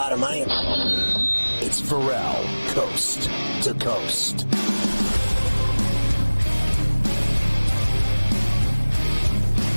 of money. It's Ferrall, coast to coast.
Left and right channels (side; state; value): both; inverted; correlation -1.00